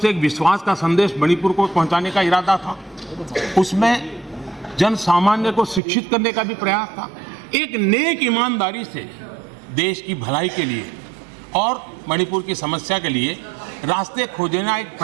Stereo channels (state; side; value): drops out; left; at 5.8 s